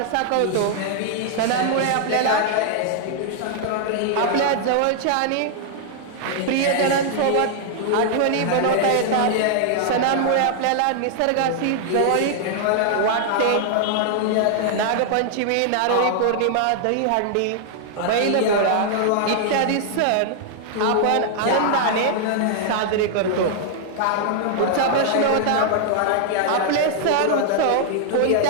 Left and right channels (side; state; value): both; different; correlation -0.01